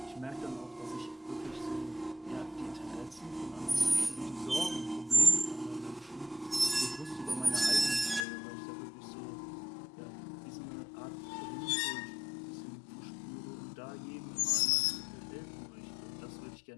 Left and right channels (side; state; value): right; drops out; at 8.2 s